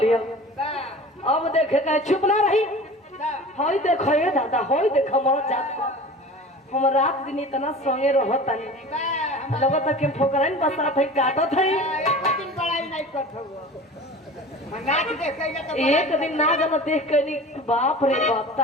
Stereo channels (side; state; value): both; normal; correlation 0.38